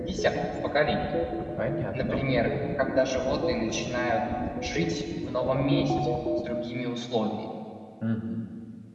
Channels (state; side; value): identical; both; correlation 1.00